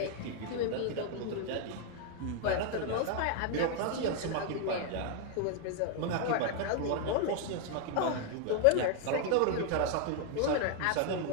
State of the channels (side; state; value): both; different; correlation 0.00